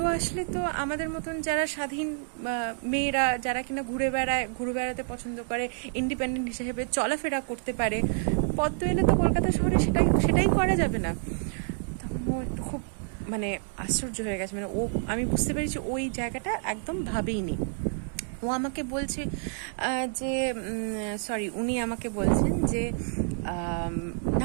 আসলে তো আমাদের মতন যারা স্বাধীন মেয়েরা, যারা কিনা ঘুরে বেড়াতে পছন্দ করে, ইন্ডিপেন্ডেন্ট হিসেবে চলাফেরা করতে পারে, পদ্ম এলে তো কলকাতা শহরে সেটাই করা যাবে না। তখন ও একটু খুব মানে আশ্চর্য হয়ে গেছে। মানে আমি বুঝতে পেরেছি ওই জায়গাটা একদম ভাবেইনি। ও আমাকে বলছে যে সরি, উনি আমাকে বলছেন যে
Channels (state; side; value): silent; left; 59 dB below the other